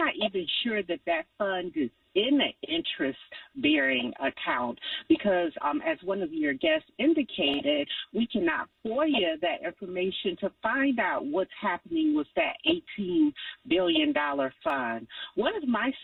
even sure that fund is in an interest-bearing account because, as one of your guests indicated, we cannot FOIA that information to find out what's happening with that $18 billion fund. One of my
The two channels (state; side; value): identical; both; correlation 1.00